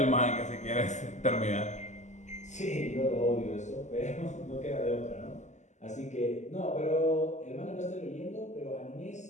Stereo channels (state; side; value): late; right; 0.34 ms